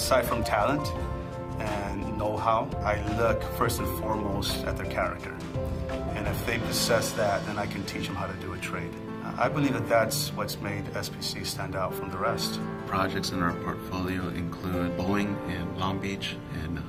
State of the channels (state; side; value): identical; both; correlation 1.00